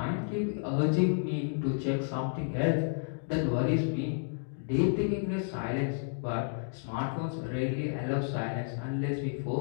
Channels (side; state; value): right; silent; digital silence